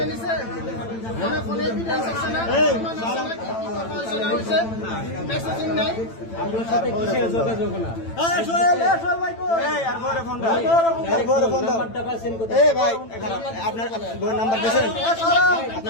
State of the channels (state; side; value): late; right; 9.0 ms